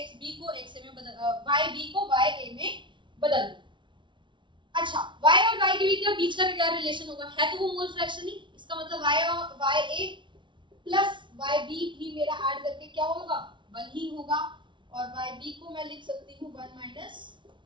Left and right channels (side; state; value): left; late; 0.24 ms